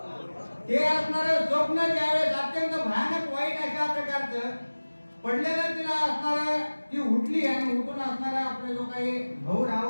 ते असणारं स्वप्न ज्यावेळेस अत्यंत भयानक वाईट अशा प्रकारचं पडलेलं तिला असणारं ती उठली आणि उठून असणारा आपले जो काही भाऊ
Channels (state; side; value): inverted; both; correlation -1.00